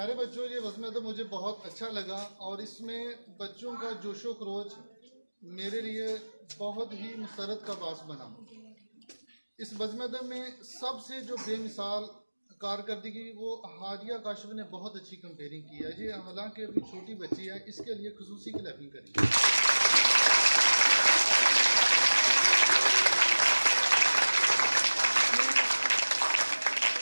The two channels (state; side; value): inverted; both; correlation -1.00